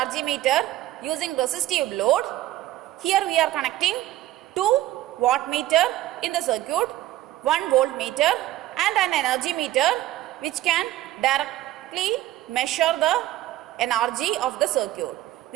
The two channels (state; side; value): quieter; left; 14.9 dB